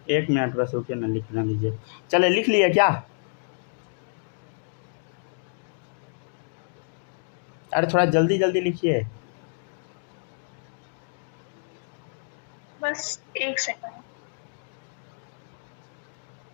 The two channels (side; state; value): right; silent; digital silence